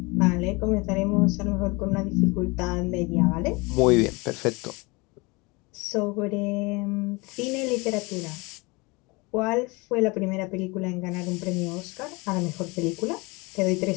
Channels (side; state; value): right; quieter; 26.3 dB